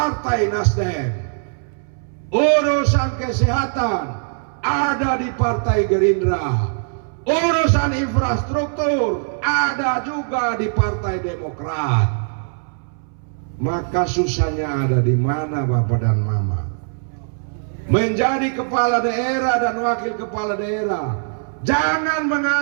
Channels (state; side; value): silent; left; 64 dB below the other